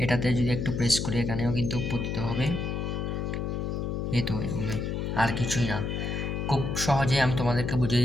এটাতে যদি একটু প্রেস করি এখানেও কিন্তু পতিত হবে। এই তো এগুলোই, আর কিছুই না। খুব সহজে আমি তোমাদেরকে বুঝিয়ে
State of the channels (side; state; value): left; noise; hum, 2 dB below the sound